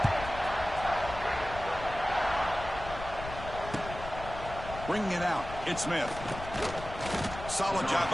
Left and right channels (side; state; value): left; noise; rumble, 11 dB below the sound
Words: Bringing it out, it's Smith. Solid job